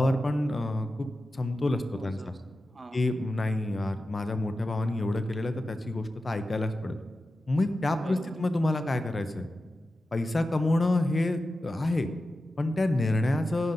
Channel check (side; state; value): both; normal; correlation 0.92